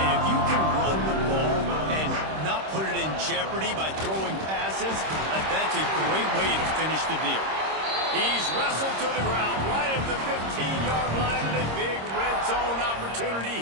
if you can run the ball and not put it in jeopardy by throwing passes, that's a great way to finish the deal. He's wrestled to the ground right at the 15-yard line, and a big red zone opportunity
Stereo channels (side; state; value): left; late; 26 ms